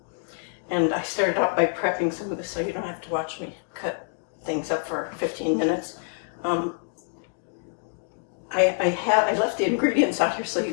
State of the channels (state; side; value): silent; right; 61 dB below the other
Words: And I started out by prepping some of this so you don't have to watch me cut things up for 15 minutes. I left the ingredients out here so